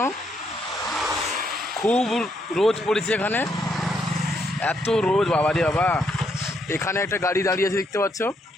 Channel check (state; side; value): normal; both; correlation 0.75